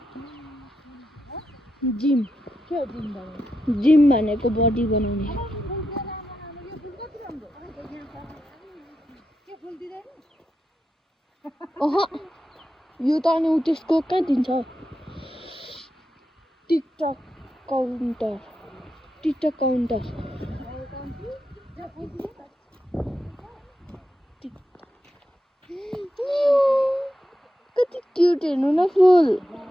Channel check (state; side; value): normal; both; correlation 0.87